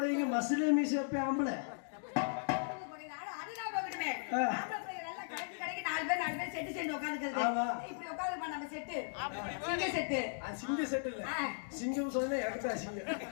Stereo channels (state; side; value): silent; right; digital silence